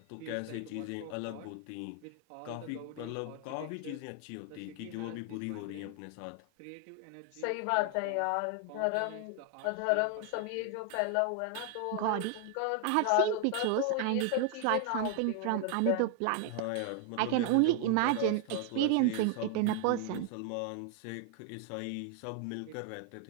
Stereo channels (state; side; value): different; both; correlation 0.00